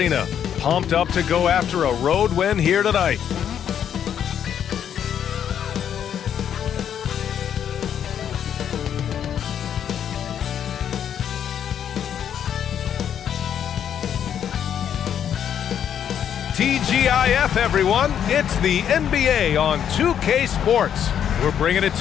pumped up to go after a road win here tonight. TGIF, everyone. It's the NBA on 2K Sports. We're bringing it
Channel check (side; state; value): right; quieter; 9.1 dB